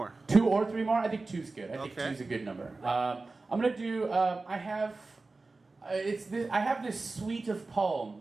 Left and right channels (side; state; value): left; quieter; 3.6 dB